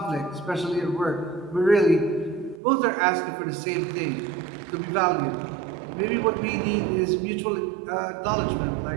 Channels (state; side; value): drops out; left; at 2.6 s